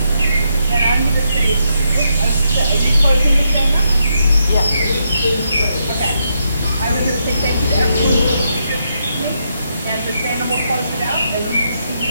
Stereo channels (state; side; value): inverted; both; correlation -0.81